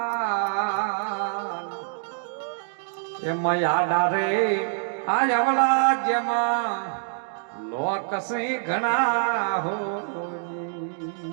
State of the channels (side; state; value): left; silent; digital silence